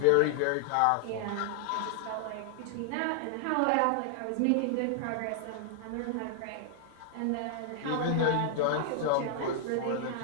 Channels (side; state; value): both; different; correlation 0.00